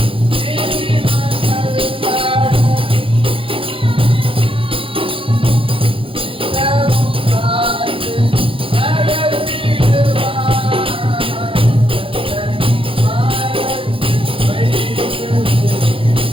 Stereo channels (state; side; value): late; left; 0.26 ms